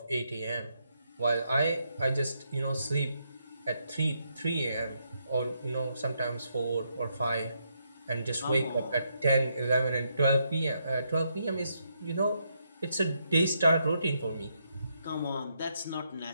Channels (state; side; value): inverted; both; correlation -0.78